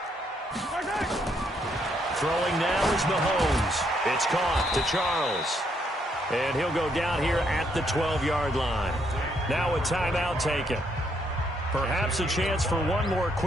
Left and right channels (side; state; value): both; normal; correlation 0.73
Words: Throwing now is Mahomes. It's caught to Charles. And he'll go down here at the 12-yard line. Now a timeout taken. Perhaps a chance for one more